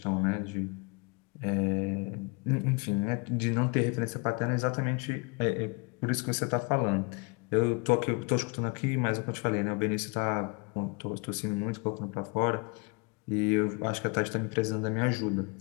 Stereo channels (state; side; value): quieter; right; 31.7 dB